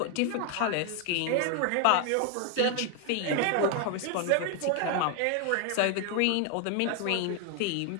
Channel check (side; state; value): both; different; correlation 0.01